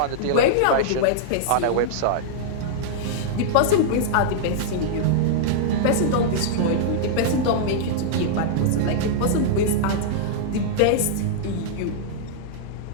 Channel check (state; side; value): different; both; correlation -0.02